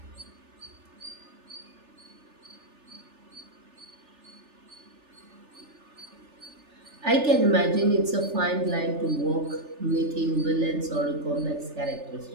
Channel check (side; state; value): left; late; 3.4 ms